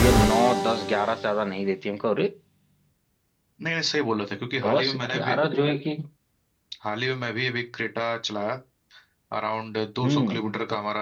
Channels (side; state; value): both; identical; correlation 1.00